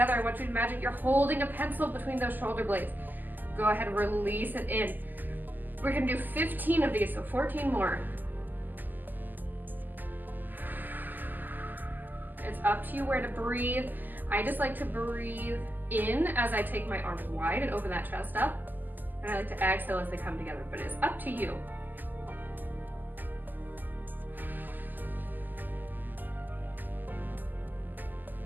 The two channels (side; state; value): left; late; 0.087 ms